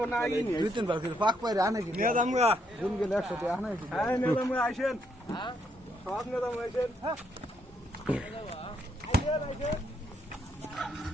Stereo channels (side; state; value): both; normal; correlation 0.74